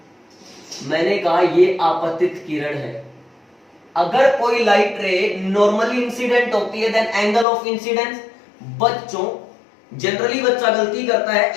मैंने कहा ये आपतित किरण है। अगर कोई लाइट रे नॉर्मली इंसिडेंट होती है देन एंगल ऑफ इंसिडेंस, बच्चों जनरली बच्चा गलती करता है,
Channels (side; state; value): right; drops out; at 7.5 s